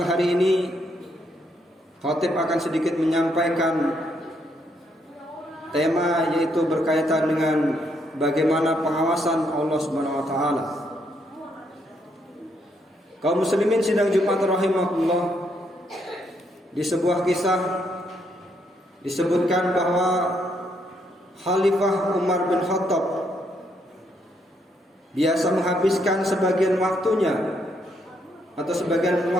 hari ini khatib akan sedikit menyampaikan tema, yaitu berkaitan dengan bagaimana pengawasan Allah Subhanahu wa taala. Kaum muslimin sidang Jumat rahimahullah, di sebuah kisah disebutkan bahwa Khalifah Umar bin Khattab biasa menghabiskan sebagian waktunya atau sebagian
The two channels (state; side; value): normal; both; correlation 0.75